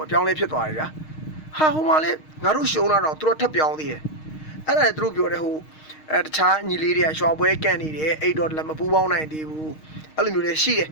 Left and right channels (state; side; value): late; right; 6.4 ms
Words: ုတ်ပြောင်းလဲဖြစ်သွားတယ်ဗျာဟာဟိုမှာလေငါတို့ရှုံးလာတော့သူတို့ထပ်ပြောင်းသေးတယ်အဲ့ဒါလည်းသူတို့ပြောတယ်ဟိုတခြားညီလေးတွေကရွှေပွဲကန်နေတယ်အဲ့တော့လည်းမပူးပေါင်းနိုင်သေးဘူးအဲ့လိုမျိုးလည်းရှိတယ်